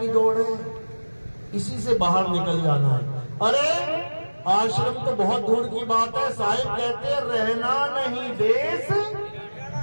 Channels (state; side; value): inverted; both; correlation -1.00